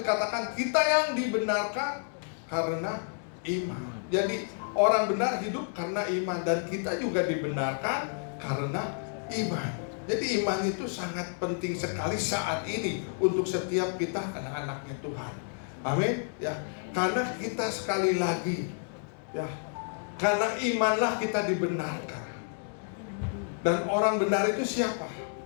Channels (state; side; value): silent; right; 58 dB below the other